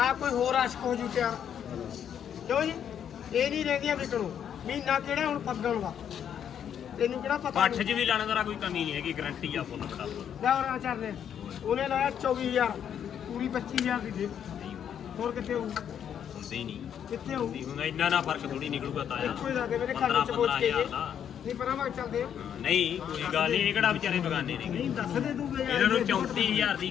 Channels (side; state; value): right; quieter; 8.9 dB